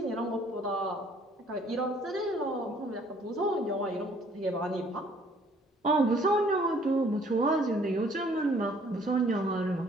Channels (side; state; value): both; normal; correlation 0.59